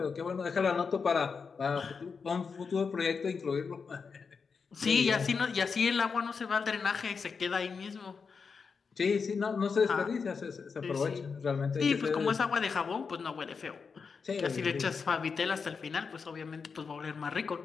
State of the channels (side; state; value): right; quieter; 5.4 dB